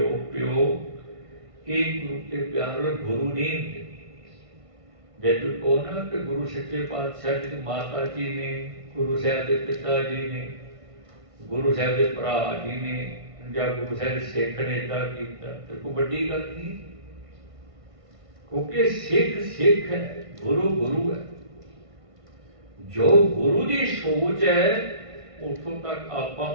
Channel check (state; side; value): late; left; 1.5 ms